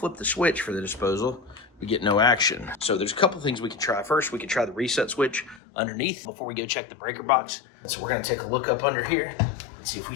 the switch for the disposal, we get no action. So there's a couple things we can try. First, we can try the reset switch underneath before we go check the breaker box. So we're gonna take a look up under here and see if we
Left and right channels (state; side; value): drops out; right; at 5.6 s